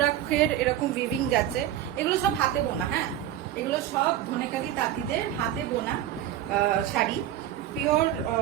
এরকম উইভিং যাচ্ছে। এগুলো সব হাতে বোনা, হ্যাঁ, এগুলো সব ধনেকালি তাঁতিদের হাতে বোনা শাড়ি, পিওর,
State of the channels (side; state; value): left; quieter; 11.9 dB